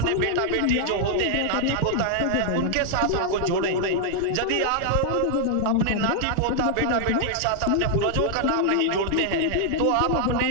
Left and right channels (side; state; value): both; different; correlation 0.00